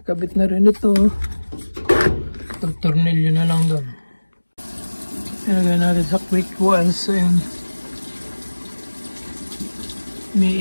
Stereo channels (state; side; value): inverted; both; correlation -1.00